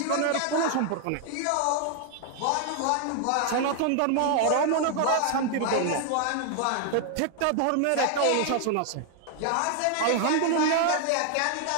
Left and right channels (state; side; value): different; both; correlation 0.00